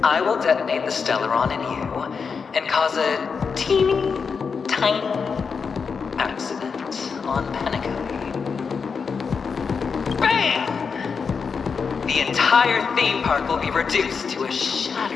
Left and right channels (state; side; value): quieter; right; 5.6 dB